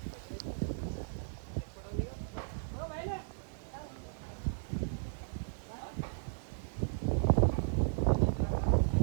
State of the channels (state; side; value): silent; left; digital silence